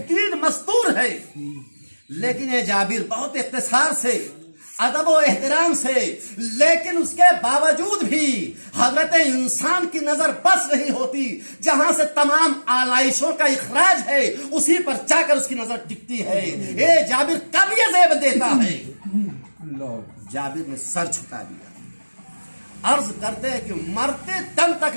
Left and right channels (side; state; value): both; inverted; correlation -1.00